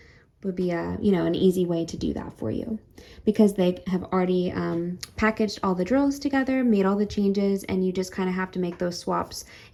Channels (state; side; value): identical; both; correlation 1.00